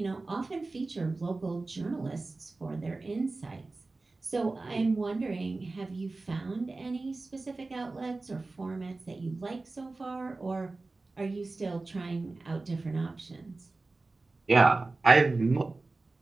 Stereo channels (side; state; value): left; quieter; 3.4 dB